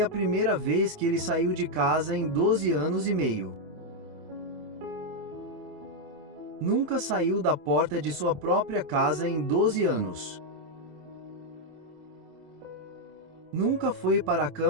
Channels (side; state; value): left; late; 27 ms